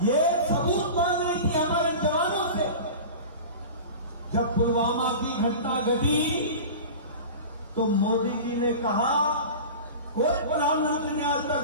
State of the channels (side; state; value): both; inverted; correlation -0.33